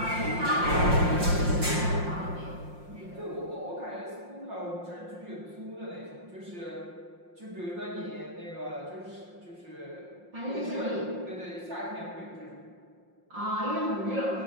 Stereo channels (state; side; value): late; left; 5.6 ms